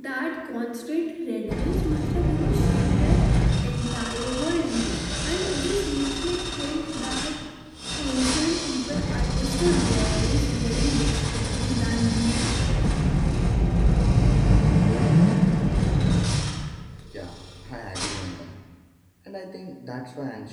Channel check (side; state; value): both; identical; correlation 1.00